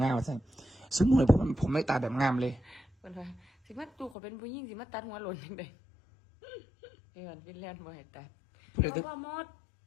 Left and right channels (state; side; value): drops out; right; at 4.2 s